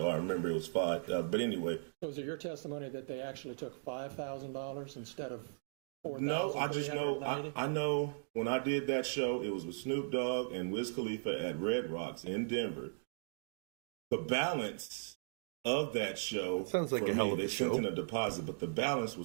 I remember it was five. But anyway. So is it your testimony that they actually took $5,000 instead of $4,390? No, I just know. I know when I did that show, it was with Snoop Dogg and Wiz Khalifa at Red Rocks in Denver. The balance of that show sounds like for a hell me, of a they show. sent in a deposit, but the balance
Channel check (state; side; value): silent; left; digital silence